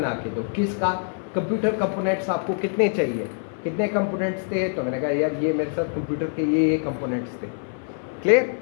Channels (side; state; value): right; silent; 59 dB below the other